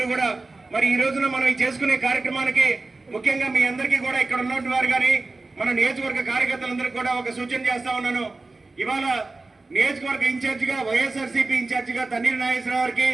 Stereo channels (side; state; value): left; quieter; 3.4 dB